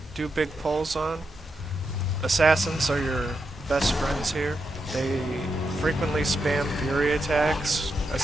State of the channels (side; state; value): both; normal; correlation 0.85